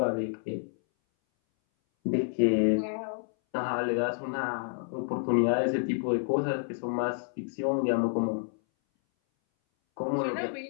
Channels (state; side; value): silent; right; 58 dB below the other